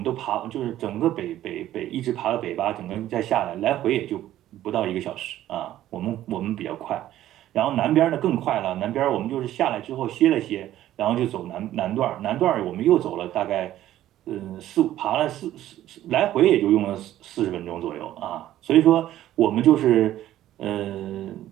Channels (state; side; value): quieter; left; 13.2 dB